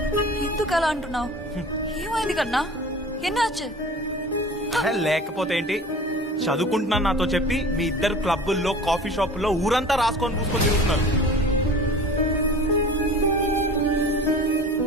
ఎందుకు అలా అంటున్నావు? ఏమైంది కన్నా? ఎన్నాச்சு? లేకపోతే ఏంటి, చదువుకుంటున్నాను నాతో చెప్పి మీ ఇద్దరు క్లబ్బుల్లో కాఫీ షాపుల్లో ఊరంతా రాసుకొని పూసుకొని తిరుగుతున్నారు.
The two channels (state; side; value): normal; both; correlation 0.41